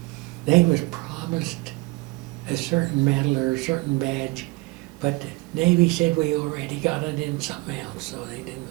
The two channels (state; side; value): quieter; left; 23.8 dB